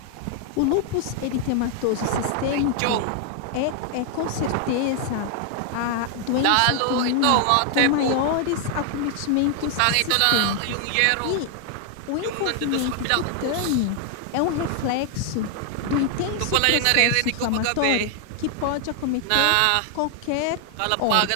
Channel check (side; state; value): both; different; correlation 0.00